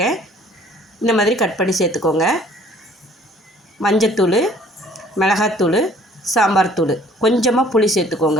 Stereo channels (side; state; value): both; normal; correlation 0.56